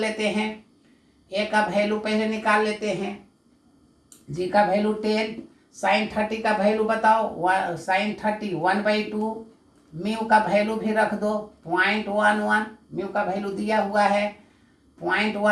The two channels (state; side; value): identical; both; correlation 1.00